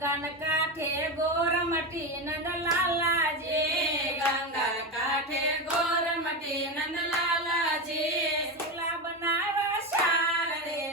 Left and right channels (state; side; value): normal; both; correlation 0.16